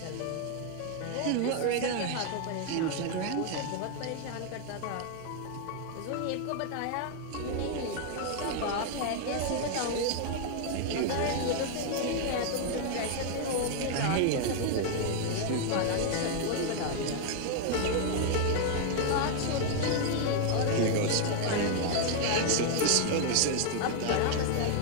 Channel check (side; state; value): both; different; correlation 0.00